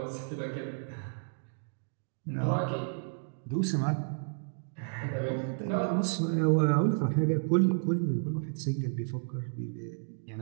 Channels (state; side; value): silent; left; digital silence